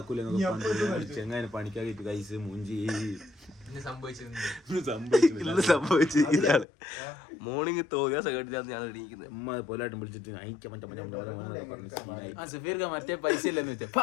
ചെങ്ങാനെ പണിക്കാക്കിട്ട് കൈസ് മൂഞ്ചി സംഭവിച്ചു. ഇതാണ് മോർണിംഗ് തോന്നിയ സെക്കൻഡിലാണ് ഞാൻ എണീക്കുന്നത്. അമ്മ പോലായിട്ടും വിളിച്ചിട്ട് മറ്റേ പൈസ ഇല്ലെന്ന് വെച്ചാൽ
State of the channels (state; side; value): drops out; right; at 6.7 s